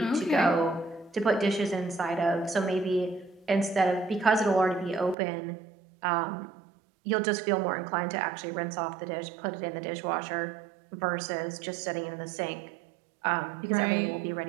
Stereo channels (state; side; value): drops out; left; at 5.2 s